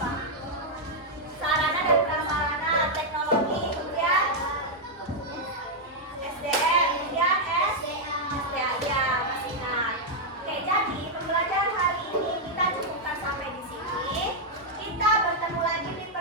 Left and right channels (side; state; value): both; normal; correlation -0.03